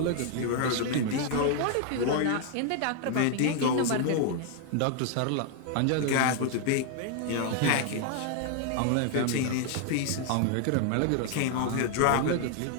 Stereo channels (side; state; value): both; different; correlation 0.00